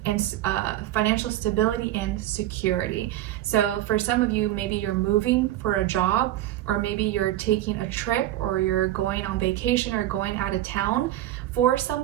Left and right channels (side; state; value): left; quieter; 14.0 dB